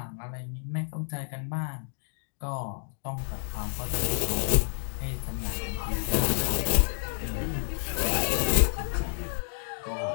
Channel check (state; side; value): silent; right; digital silence